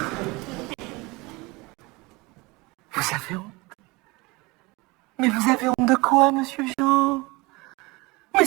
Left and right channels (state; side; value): quieter; left; 24.1 dB